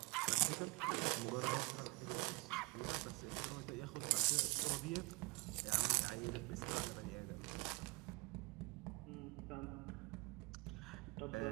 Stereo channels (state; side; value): quieter; left; 26.3 dB